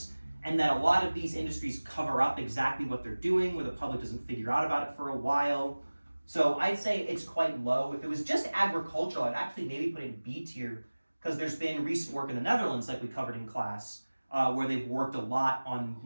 and that a lot of these industries cover up exactly what they're doing, where the public doesn't figure out about it for a while. So I'd say it's quite low. If it was just agricultural, I'd actually maybe put it in B tier, because there's been recent work in the Netherlands, like we covered in class, where they've worked a lot on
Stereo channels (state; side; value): inverted; both; correlation -1.00